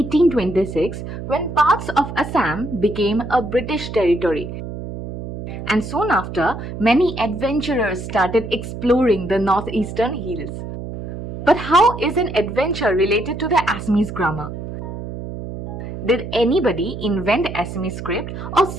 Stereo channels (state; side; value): noise; right; hum, 8 dB below the sound